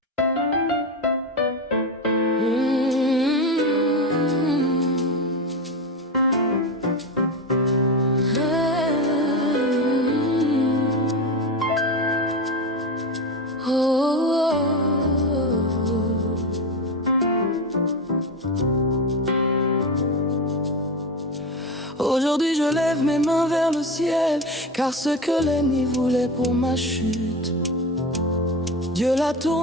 Aujourd'hui je lève mes mains vers le ciel, car ce que l'ennemi voulait pour ma chute, Dieu l'a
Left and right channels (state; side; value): normal; both; correlation 0.20